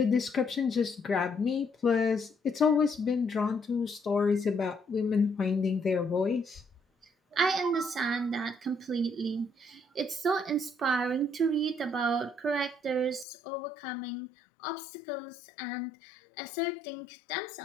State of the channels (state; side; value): drops out; right; at 13.2 s